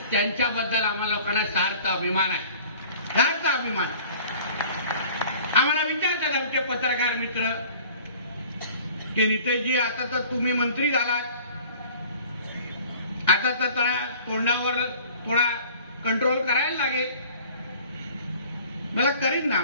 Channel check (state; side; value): inverted; both; correlation -0.49